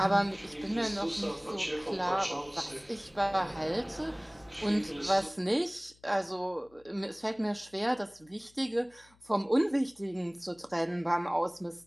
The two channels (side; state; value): left; noise; hum, 30 dB below the sound